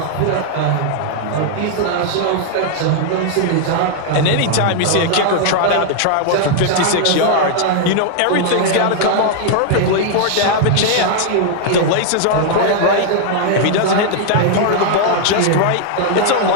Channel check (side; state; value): both; different; correlation 0.00